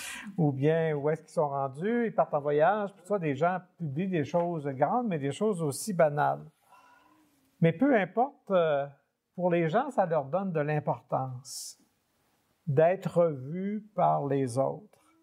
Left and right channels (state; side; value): identical; both; correlation 1.00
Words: ou bien où est-ce qu'ils sont rendus, ils partent en voyage. Tout ça, des gens publient des choses grandes, mais des choses aussi banales. Mais peu importe, pour les gens, ça leur donne de l'importance d'être vus par les autres,